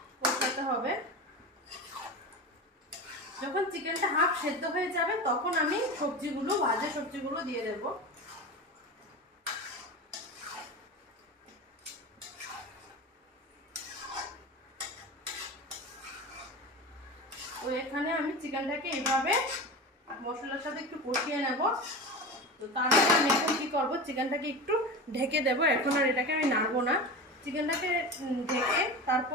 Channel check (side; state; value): both; normal; correlation 0.28